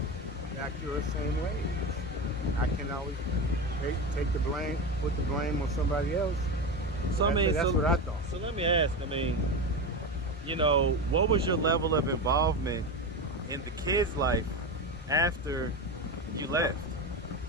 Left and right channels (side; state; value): both; normal; correlation 0.20